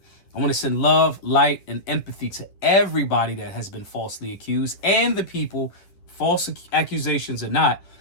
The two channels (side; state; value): right; late; 10 ms